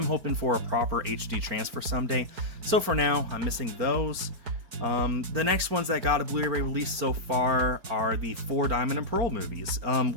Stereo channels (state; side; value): late; left; 4.4 ms